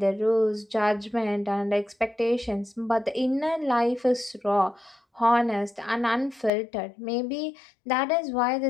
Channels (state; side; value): drops out; right; at 6.5 s